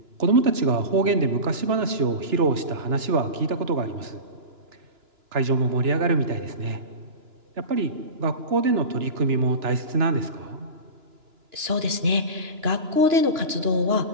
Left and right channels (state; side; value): late; left; 2.9 ms